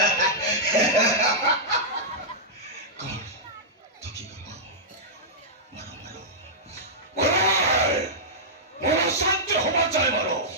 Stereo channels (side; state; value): both; normal; correlation -0.11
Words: শান্তি হওয়া চাই মারো